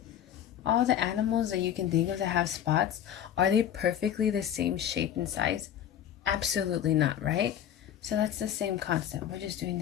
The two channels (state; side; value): quieter; right; 10.2 dB